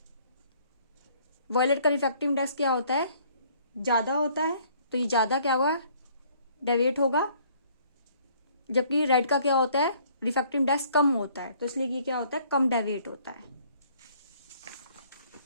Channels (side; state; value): both; inverted; correlation -0.60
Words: वायलेट का रिफ्रैक्टिव इंडेक्स क्या होता है ज्यादा होता है, तो ये ज्यादा क्या होगा डेविएट होगा, जबकि रेड का क्या होता है रिफ्रैक्टिव इंडेक्स कम होता है, तो इसलिए ये क्या होता है कम डेविएट होता है।